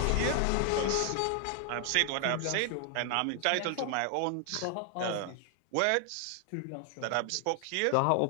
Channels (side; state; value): both; different; correlation 0.00